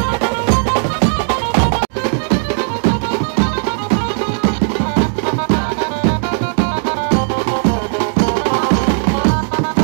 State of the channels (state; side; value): silent; left; 58 dB below the other